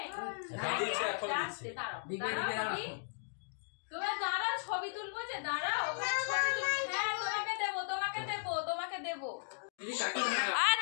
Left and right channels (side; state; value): right; silent; digital silence